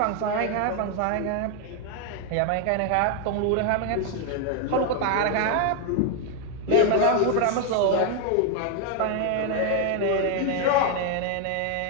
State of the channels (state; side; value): different; both; correlation 0.01